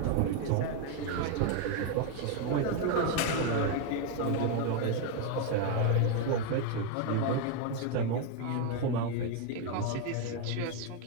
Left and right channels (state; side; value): different; both; correlation 0.01